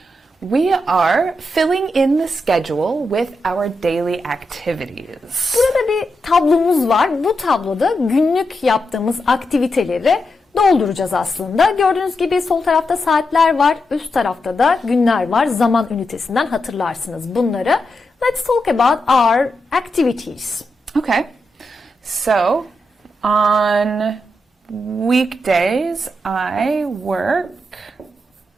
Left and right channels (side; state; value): both; normal; correlation 0.86